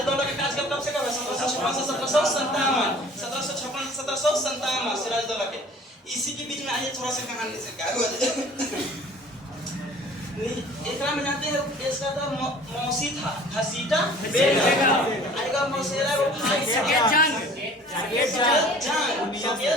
का कार्यकाल कब से कब है? 1756 से 1757। 1756 से 1757 सिराजुद्दौला के। इसी के बीच में आइए थोड़ा सा कहानी से क्या हुआ। एकरा में जानते हैं इसका तो मौसी था, घसीटा बेगम। आएगा मौसेरा को भाई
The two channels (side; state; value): both; normal; correlation 0.49